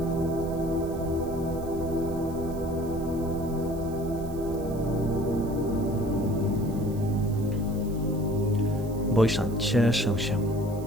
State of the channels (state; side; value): noise; right; hiss, 21 dB below the sound